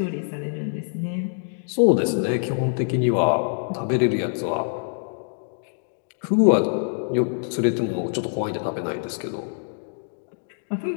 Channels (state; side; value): silent; right; digital silence